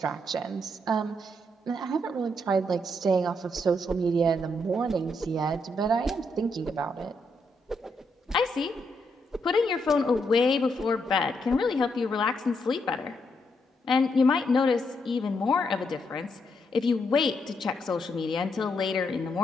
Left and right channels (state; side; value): normal; both; correlation 0.78